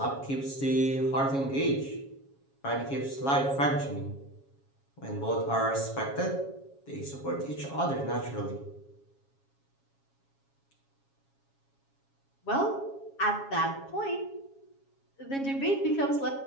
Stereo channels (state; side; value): late; right; 7.3 ms